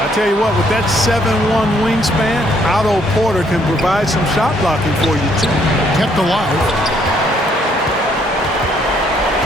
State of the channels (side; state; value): both; normal; correlation 0.68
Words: I tell you what, with that 7'1" wingspan, Otto Porter can provide some shot blocking for you, too. Kept alive.